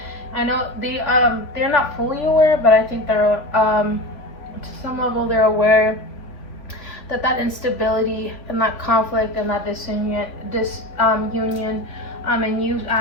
I know they're not fully aware, but I think they're to some level they're aware that instability and that conflict and that disunion, and you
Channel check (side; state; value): right; late; 3.6 ms